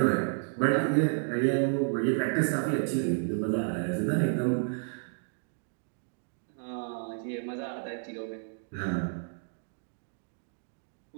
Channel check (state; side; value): silent; left; digital silence